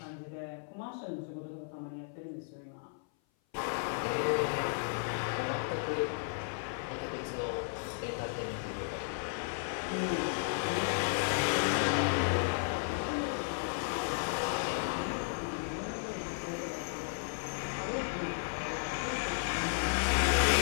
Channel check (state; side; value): silent; right; 55 dB below the other